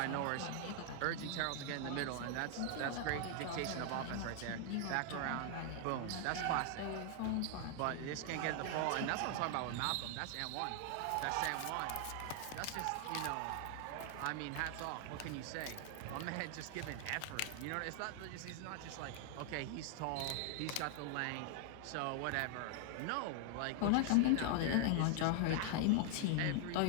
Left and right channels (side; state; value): both; different; correlation 0.00